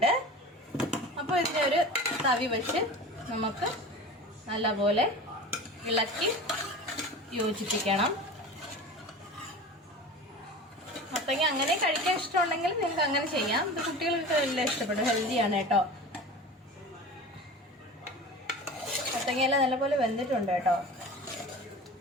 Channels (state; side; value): normal; both; correlation 0.34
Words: അപ്പോൾ ഇതിനെ ഒരു തവി വെച്ച് നമുക്ക് നല്ലപോലെ ഇളക്കി യോജിപ്പിക്കണം. മത്തങ്ങ അങ്ങനെ കഴിക്കാൻ ഇഷ്ടമുണ്ടെങ്കിൽ നിങ്ങൾക്ക് അങ്ങനെ ചെയ്യാം. ഇത് കുട്ടികൾക്ക് എല്ലാം ഇഷ്ടപ്പെടും. ഹെൽത്തിയാണ് കേട്ടോ. മത്തങ്ങയെല്ലാം നല്ലപോലെ വെന്തിട്ടുണ്ട് കേട്ടോ.